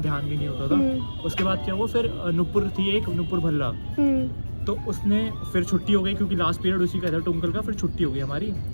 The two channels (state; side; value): inverted; both; correlation -1.00